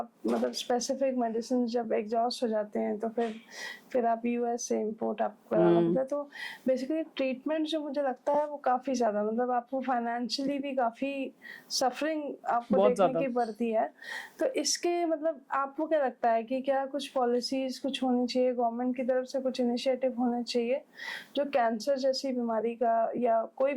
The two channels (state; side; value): identical; both; correlation 1.00